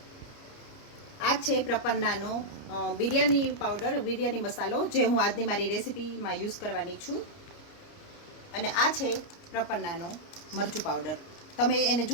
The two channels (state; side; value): late; right; 29 ms